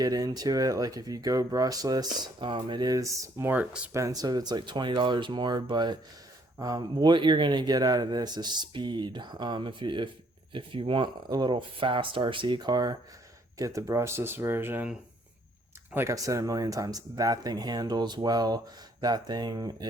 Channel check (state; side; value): normal; both; correlation 0.65